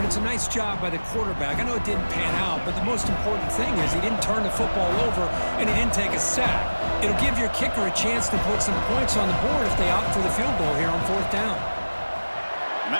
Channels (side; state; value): both; inverted; correlation -1.00